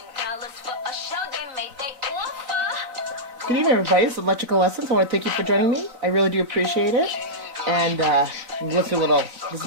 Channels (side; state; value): left; late; 4.0 ms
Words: for a show they made they offer. Good evening, everybody. This is Electrical Essence. I want to thank you for joining me. I really do appreciate it. And let's do a little. This is